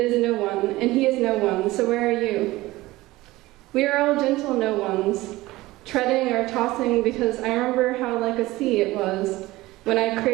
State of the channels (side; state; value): left; quieter; 18.7 dB